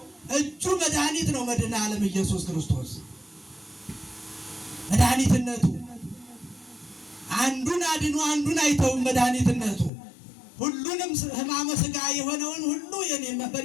እጁ መድኃኒት ነው። መድኃኔ ዓለም ኢየሱስ ክርስቶስ መድኃኒትነቱ አንዱን አድኖ አንዱን አይተውም። መድኃኒትነቱ ሁሉንም ሕማመ ሥጋ የሆነውን ሁሉ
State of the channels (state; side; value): drops out; right; at 9.9 s